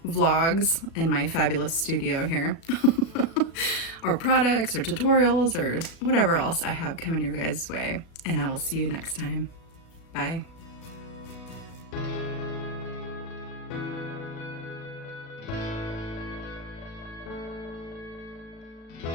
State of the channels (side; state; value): right; late; 37 ms